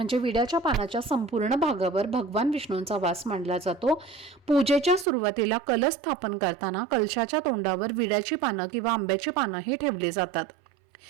विड्याच्या पानाच्या संपूर्ण भागावर भगवान विष्णूंचा वास मानला जातो. पूजेच्या सुरुवातीला कलश स्थापन करताना कलशाच्या तोंडावर विड्याची पानं किंवा आंब्याची पानं ही ठेवली जातात.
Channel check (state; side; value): drops out; left; at 5.1 s